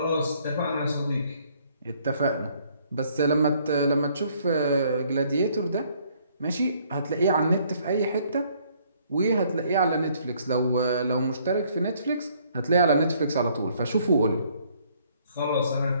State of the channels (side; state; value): both; inverted; correlation -0.64